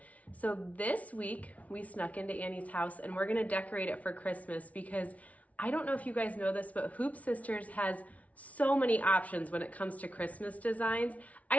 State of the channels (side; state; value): right; late; 0.068 ms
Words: So this week we snuck into Annie's house and we're gonna decorate it for Christmas because I don't know if you guys know this, but Hoop Sisters has so many options when it comes to Christmas designs.